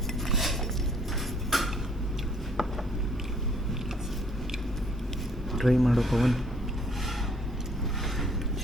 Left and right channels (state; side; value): normal; both; correlation 0.62